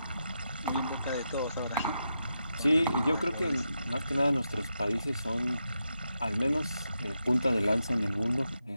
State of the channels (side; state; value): both; inverted; correlation -0.86